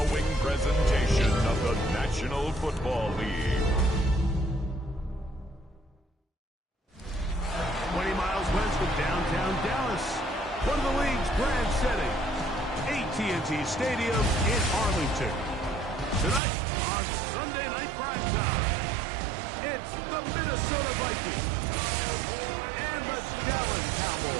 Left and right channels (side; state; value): left; drops out; at 16.4 s